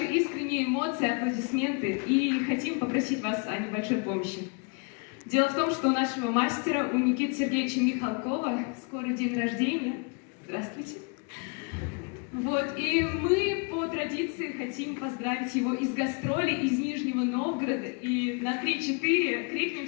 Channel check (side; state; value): right; quieter; 35.3 dB